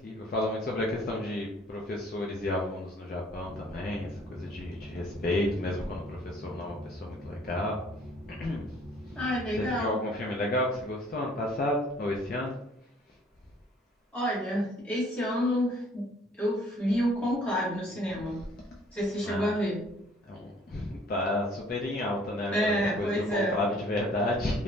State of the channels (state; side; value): normal; both; correlation 0.57